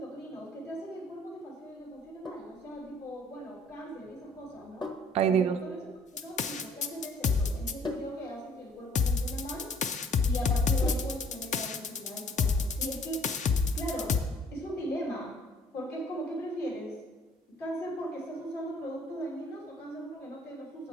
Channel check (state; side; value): normal; both; correlation 0.58